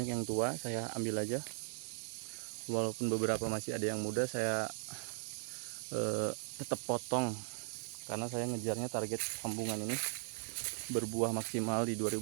yang tua, saya ambil aja. Walaupun beberapa masih ada yang muda, saya tetap potong karena saya ngejarnya target sambungan ini berbuah maksimal di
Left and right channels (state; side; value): silent; left; 52 dB below the other